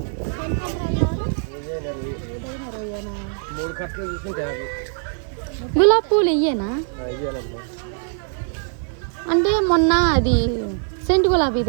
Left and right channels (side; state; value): left; silent; 60 dB below the other